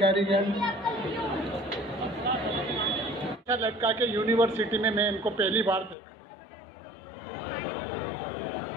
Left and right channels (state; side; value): drops out; right; at 6.0 s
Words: लड़का के यूनिवर्सिटी में मैं इनको पहली बार देखा।